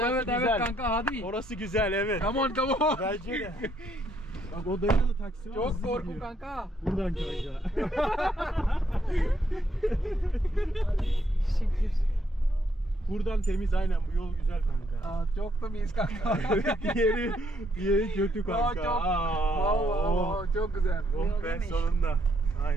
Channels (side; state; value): both; normal; correlation 0.72